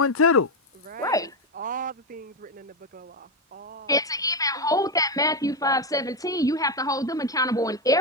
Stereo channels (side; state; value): both; normal; correlation 0.08